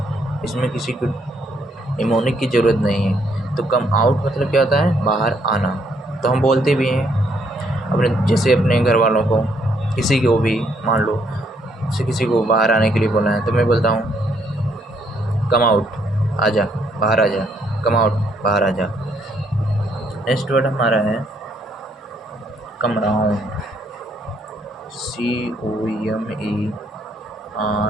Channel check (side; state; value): both; normal; correlation 0.71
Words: इसमें किसी को निमोनिक की ज़रूरत नहीं है। तो कम आउट मतलब क्या होता है, बाहर आना। तो हम बोलते भी हैं अपने, जैसे अपने घर वालों को, किसी को भी, मान लो जैसे किसी को बाहर आने के लिए बोला है, तो मैं बोलता हूँ कम आउट, आजा, बाहर आ जा, कम आउट, बाहर आ जा। नेक्स्ट वर्ड हमारा है come round, COMAROUND।